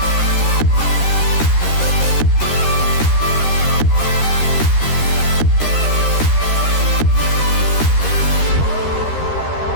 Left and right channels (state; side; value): late; right; 13 ms